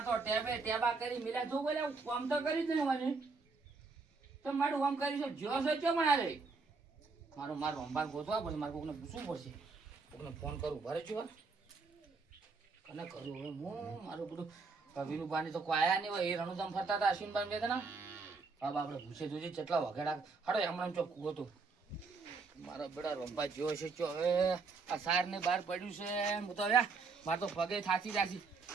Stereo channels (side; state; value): left; quieter; 4.4 dB